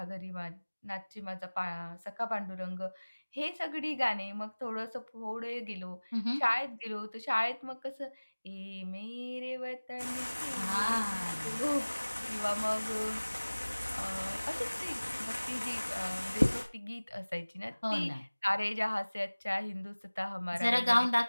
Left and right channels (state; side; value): inverted; both; correlation -1.00